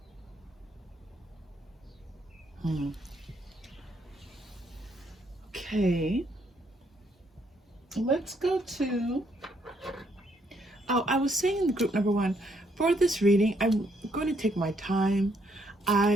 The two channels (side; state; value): both; normal; correlation 0.72